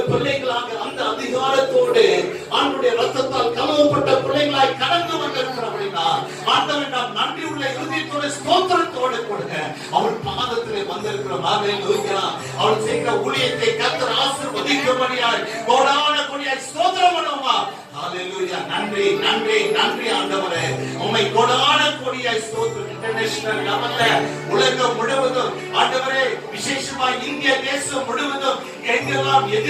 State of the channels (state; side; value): identical; both; correlation 1.00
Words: பிள்ளைகளாக அந்த அதிகாரத்தோடு ஆண்டவருடைய ரத்தத்தால் கழுவப்பட்ட பிள்ளைகளாய் கடந்து வந்திருக்கிறவர்களா ஆண்டவன் நாம் நன்றி உள்ள இருதயத்தோடு ஸ்தோத்திரத்தோடு கொடுங்க அவர் பாதத்தில் வந்திருக்கிறோம். ஹalleluya. அவர் செய்கிற ஊழியத்தை கர்த்தர் ஆசீர்வதிக்கும்படியாய் கோடான கோடியாய் ஸ்தோத்திரம் பண்ணுவோமா? ஹalleluya. நன்றி நன்றி நன்றி ஆண்டவரே, உம்மை கோடான கோடியாய் ஸ்தோத்திரம். இன்டர்நேஷனல் லெவல்ல உலகம் முழுவதும் ஆண்டவரே, விசேஷமா இந்திய தேசம் முழுவதும் எங்கெல்லாம்